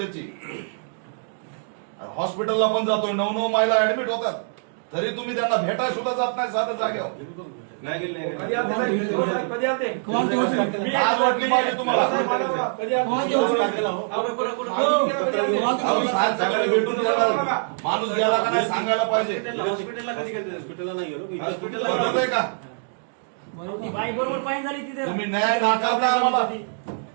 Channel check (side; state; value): left; silent; 62 dB below the other